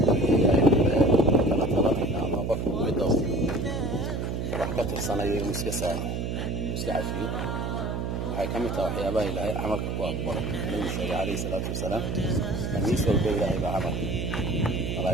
ama qofku midoo wax ka tirsanayo iska saamaxo iska cafiyo waxay ka mid tahay waxyaabaha ilaahay camalka ku aqbalo nabi sallallahu alayhi salaatu wasalaam amiis walba ilaahay baa camal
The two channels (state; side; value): noise; right; hum, 2 dB below the sound